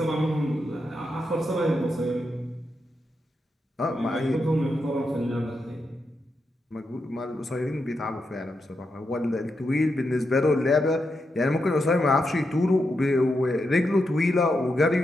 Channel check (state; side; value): normal; both; correlation 0.85